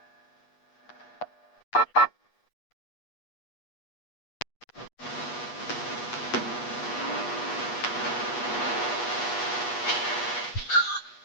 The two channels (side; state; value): right; late; 8.3 ms